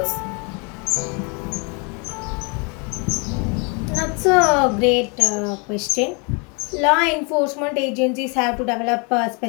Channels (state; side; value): quieter; right; 33.4 dB